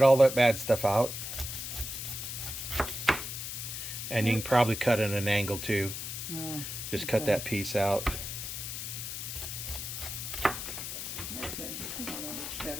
all that bad stuff out. And you can probably cut at an angle too. Just cut that piece out. Okay, well, that looks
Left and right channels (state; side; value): noise; left; hiss, 6 dB below the sound